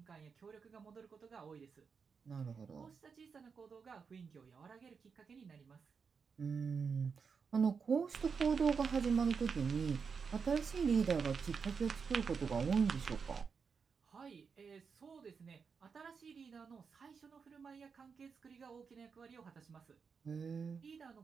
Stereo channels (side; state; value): left; quieter; 5.7 dB